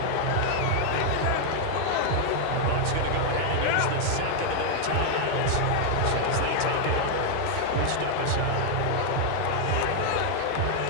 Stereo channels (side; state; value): both; different; correlation 0.00